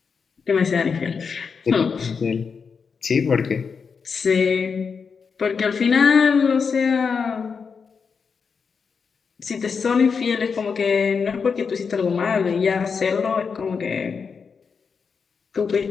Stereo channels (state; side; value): quieter; right; 5.7 dB